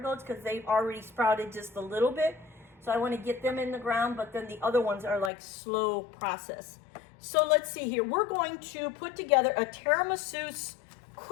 because they've already sprouted just a little bit. So I want to get them in the ground, but then the other ones are like slow process. So let's see here. We're going to put together a tiramisu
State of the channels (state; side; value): drops out; right; at 5.3 s